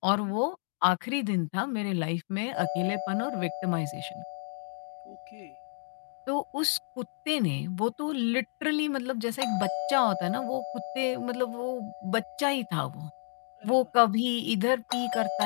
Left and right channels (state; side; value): silent; right; digital silence